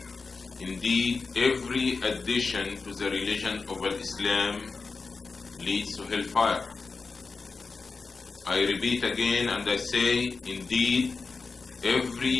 Indeed, every addition to the religion of Islam leads to hellfire. I repeat again and I say, indeed,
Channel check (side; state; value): right; quieter; 4.4 dB